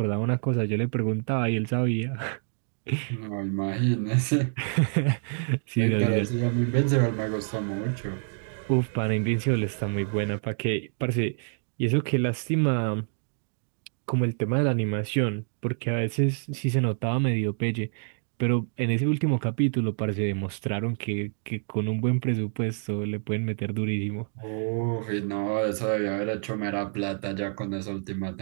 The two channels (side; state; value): left; silent; digital silence